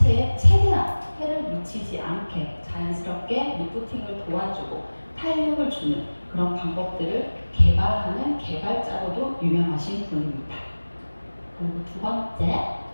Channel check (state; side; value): inverted; both; correlation -1.00